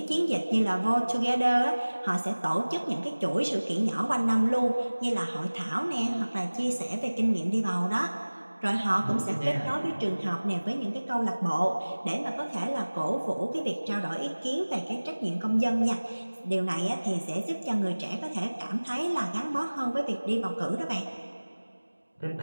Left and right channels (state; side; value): inverted; both; correlation -1.00